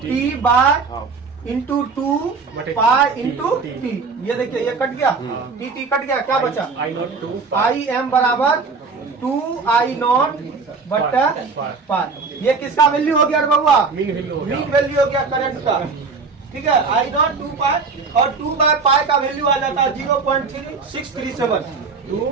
T by into 2 pi into T, ये देखिए ये कट गया, टी कट गया, क्या बचा, आई नॉट 2 आई एम बराबर 2 आई नॉट बट्टा पाई। ये किसका वैल्यू हो गया रे बउआ? मीन वैल्यू हो गया। मीन वैल्यू हो गया करंट का। ठीक है, आई नॉट 2 पाई और 2 बाय पाई का वैल्यू आ जाता है 0.3637।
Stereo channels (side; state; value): left; quieter; 4.6 dB